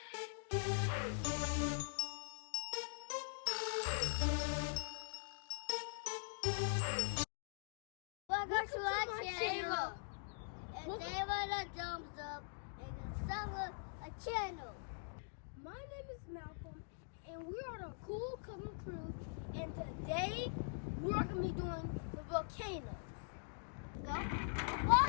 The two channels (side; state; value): right; silent; digital silence